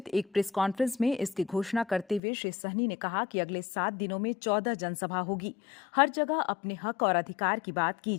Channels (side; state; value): right; drops out; at 2.2 s